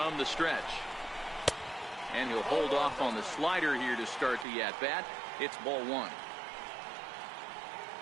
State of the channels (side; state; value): left; drops out; at 4.5 s